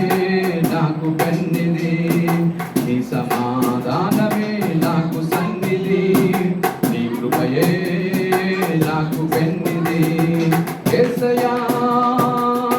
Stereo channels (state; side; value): identical; both; correlation 1.00